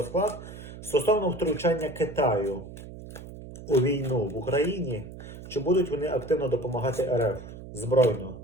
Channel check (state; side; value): noise; right; hum, 14 dB below the sound